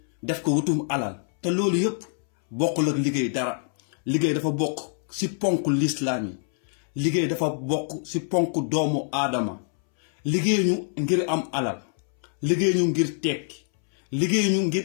def ko wutum alal te loolu yëpp bokkul ak liggéey dara liggéey dafa bokk si ponk lislaam yi liggéey dafa bokk si ponk doomu aadama liggéey ñu ngir am alal liggéey ñu ngir tekki liggéey ñu ngir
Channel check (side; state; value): right; silent; 62 dB below the other